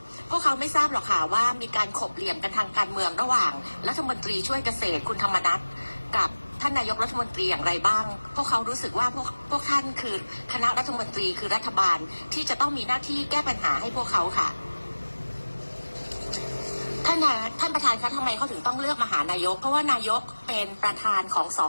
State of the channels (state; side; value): inverted; both; correlation -1.00